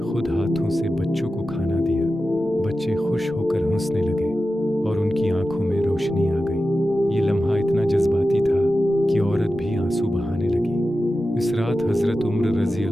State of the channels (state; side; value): normal; both; correlation 0.93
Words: हाथों से बच्चों को खाना दिया। बच्चे खुश होकर हंसने लगे और उनकी आंखों में रोशनी आ गई। ये लम्हा इतना जज्बाती था कि औरत भी आंसू बहाने लगी। इस रात हज़रत उमर रज़ी